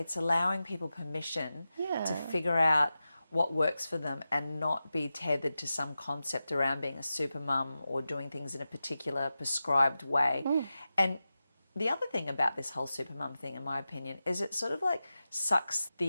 allowing people permission Yeah. to figure out what works for them and not be tethered to some concept around being a super mum or doing things in a particular prescribed way. And the other thing about this whole super mum thing, in my opinion, is it sort of like sucks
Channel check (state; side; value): inverted; both; correlation -0.93